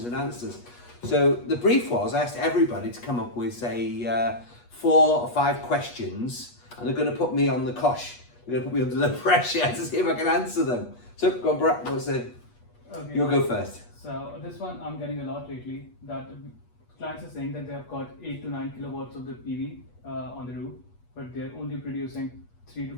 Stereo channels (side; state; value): right; late; 8.3 ms